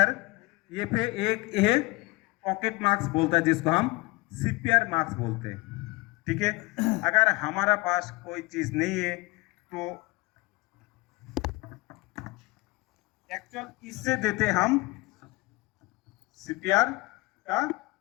ये पे एक ये पॉकेट मार्क्स बोलता है जिसको हम सीपीआर मार्क्स बोलते हैं। ठीक है, अगर हमारा पास कोई चीज नहीं है तो एक्चुअल इससे देते हम सीपीआर का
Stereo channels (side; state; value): right; quieter; 23.0 dB